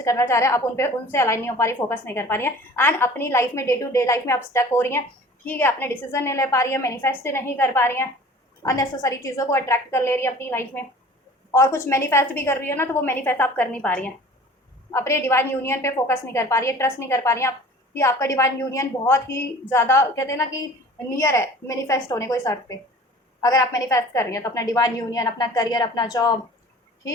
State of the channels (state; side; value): normal; both; correlation 0.45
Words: चाह रहे हैं, आप उनसे अलाइन नहीं हो पा रही, फोकस नहीं कर पा रही है। एंड अपनी लाइफ में, डे टू डे लाइफ में आप स्टक हो रही हैं, ठीक है, अपने डिसीजन नहीं ले पा रही है, मैनिफेस्ट नहीं कर पा रही हैं, अननेसेसरी चीज़ों को अट्रैक्ट कर ले रही है अपनी लाइफ में, और कुछ मैनिफेस्ट भी कर रही है ना, तो वो मैनिफेस्ट आप कर नहीं पा रही हैं, अपने डिवाइन यूनियन पे फोकस नहीं कर पा रही है, ट्रस्ट नहीं कर पा रही हैं आप कि आपका डिवाइन यूनियन बहुत ही ज़्यादा कहते हैं ना कि नियर है मैनिफेस्ट होने को इस अर्थ पे। अगर आप मैनिफेस्ट कर रही हैं तो अपना डिवाइन यूनियन, अपना करियर, अपना जॉब,